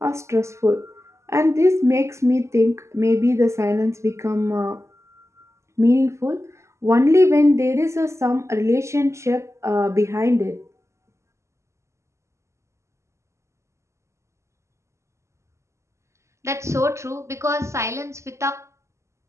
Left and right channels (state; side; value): late; left; 0.14 ms